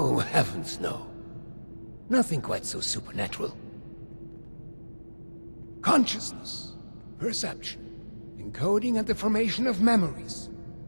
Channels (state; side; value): inverted; both; correlation -1.00